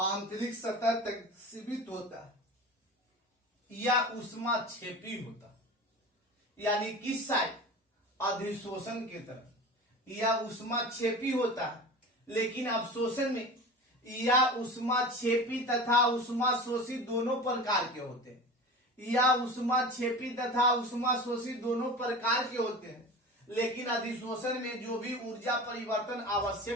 सतह तक सीमित होता या ऊष्माक्षेपी होता। यानी किस साइड? अधिशोषण की तरफ या ऊष्माक्षेपी होता है, लेकिन अवशोषण में या ऊष्माक्षेपी तथा ऊष्माशोषी दोनों प्रकार के होते हैं। या ऊष्माक्षेपी तथा ऊष्माशोषी दोनों प्रकार के होते हैं, लेकिन अधिशोषण में जो भी ऊर्जा परिवर्तन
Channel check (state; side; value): normal; both; correlation 0.33